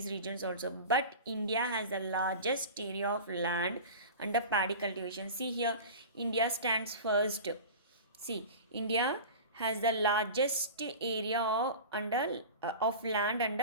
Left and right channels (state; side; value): inverted; both; correlation -0.33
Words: regions also. But India has the largest area of land under paddy cultivation. See here, India stands first. See, India has the largest area of land